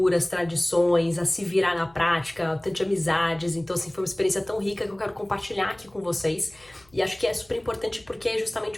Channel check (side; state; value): left; noise; hum, 30 dB below the sound